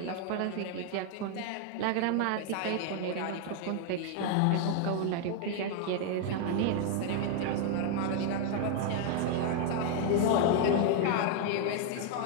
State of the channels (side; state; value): both; different; correlation 0.00